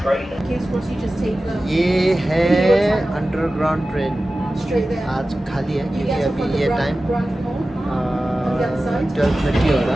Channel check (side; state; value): both; normal; correlation 0.95